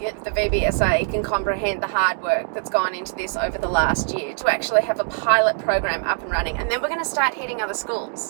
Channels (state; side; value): silent; left; 56 dB below the other